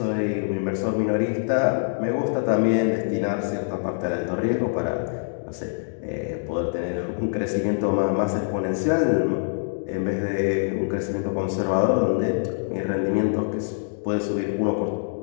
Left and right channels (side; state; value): right; silent; digital silence